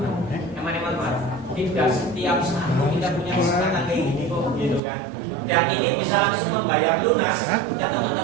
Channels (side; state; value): left; drops out; at 4.8 s